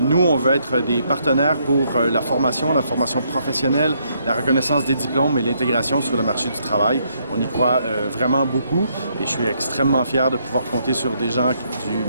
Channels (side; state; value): both; inverted; correlation -0.73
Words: nous, on veut être des partenaires pour la formation professionnelle, la reconnaissance des diplômes et l'intégration sur le marché du travail. On y croit vraiment beaucoup et je suis extrêmement fier de pouvoir compter sur des gens du